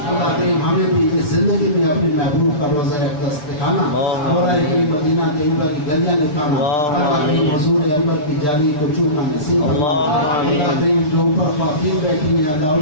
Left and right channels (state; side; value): late; right; 6.8 ms